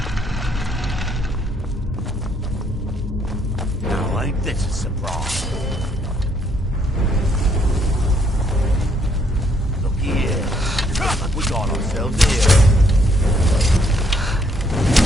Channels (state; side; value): normal; both; correlation 0.69